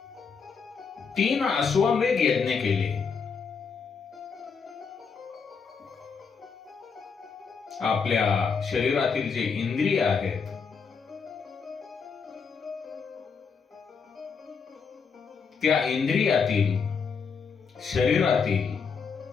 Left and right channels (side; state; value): right; quieter; 5.7 dB